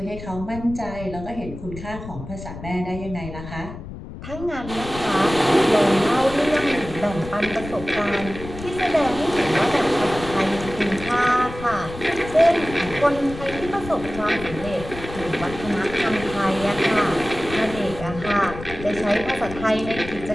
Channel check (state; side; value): noise; left; rumble, 12 dB below the sound